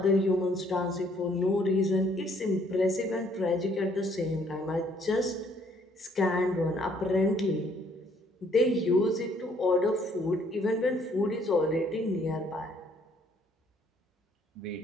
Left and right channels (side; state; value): both; normal; correlation 0.64